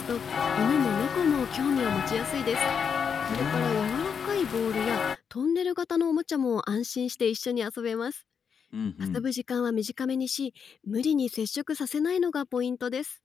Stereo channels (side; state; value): right; quieter; 6.7 dB